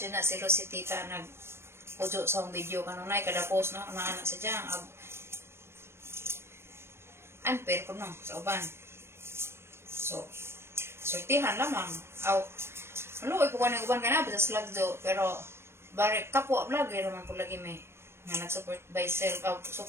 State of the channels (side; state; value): left; late; 0.12 ms